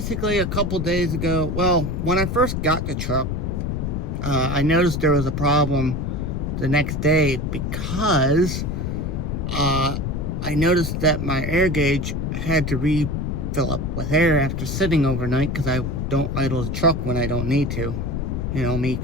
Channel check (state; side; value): noise; left; rumble, 2 dB below the sound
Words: a couple days ago, well, when I first got the truck, I noticed there was a problem the next day because I noticed that my air gauge had to refill up with air after sitting overnight, because I don't idle the truck when I don't need to. You know, me